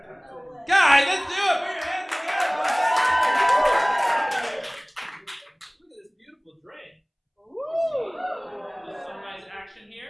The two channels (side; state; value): both; identical; correlation 1.00